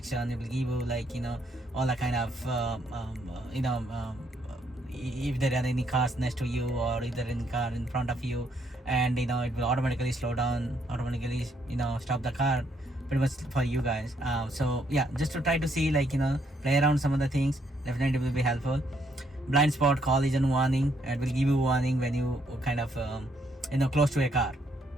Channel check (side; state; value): both; normal; correlation 0.72